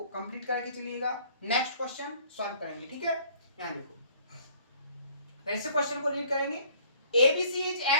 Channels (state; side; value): inverted; both; correlation -0.56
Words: कंप्लीट करके चलिएगा। नेक्स्ट क्वेश्चन सॉल्व करेंगे, ठीक है? यहां देखो, फिर से क्वेश्चन को रीड करेंगे। ABC is